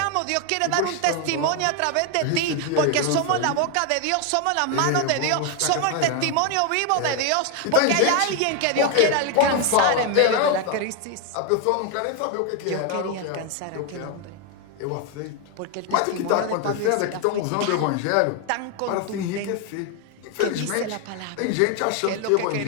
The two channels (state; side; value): different; both; correlation 0.01